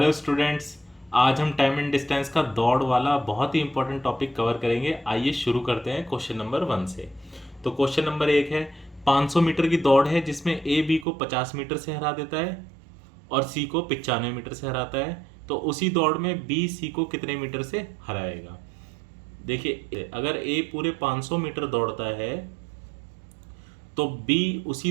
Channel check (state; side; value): drops out; left; at 11.1 s